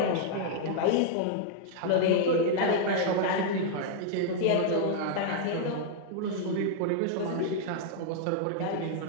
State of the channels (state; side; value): different; both; correlation -0.01